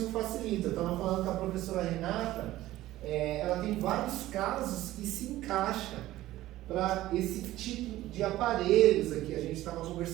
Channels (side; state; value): left; quieter; 15.6 dB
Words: facilita. Eu estava falando com a professora Renata, ela tem vários casos que se encaixam para esse tipo de aparelhos aqui. A gente estava